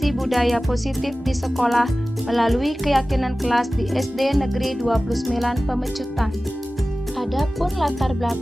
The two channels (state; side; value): normal; both; correlation 0.97